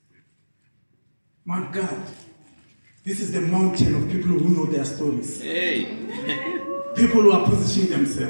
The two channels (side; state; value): both; inverted; correlation -1.00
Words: My God, this is the mountain of people who know their stories. People who are positioning